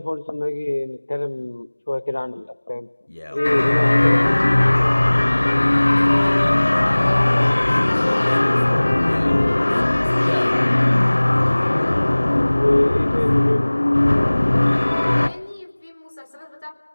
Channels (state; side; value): inverted; both; correlation -1.00